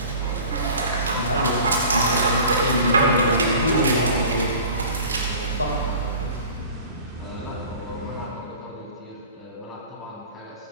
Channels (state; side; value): inverted; both; correlation -0.42